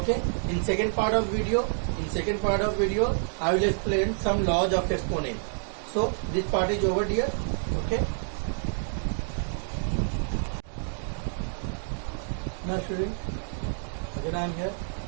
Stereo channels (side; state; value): left; silent; digital silence